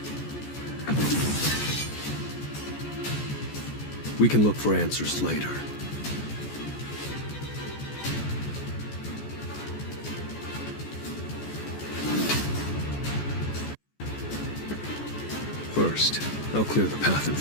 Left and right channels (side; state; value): right; late; 14 ms